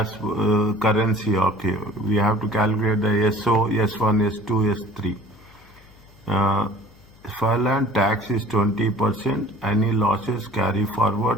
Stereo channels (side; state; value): left; noise; hum, 26 dB below the sound